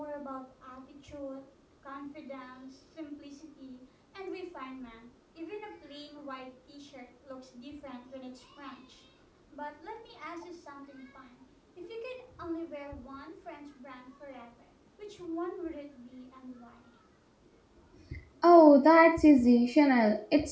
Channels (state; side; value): identical; both; correlation 1.00